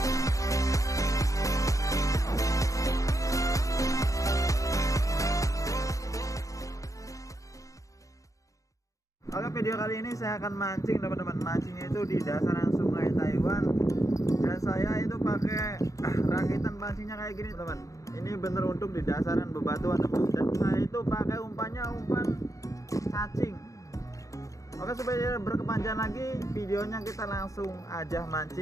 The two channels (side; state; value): right; late; 0.16 ms